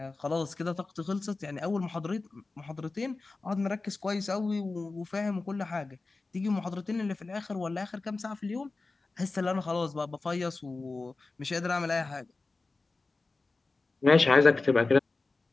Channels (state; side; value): quieter; right; 3.6 dB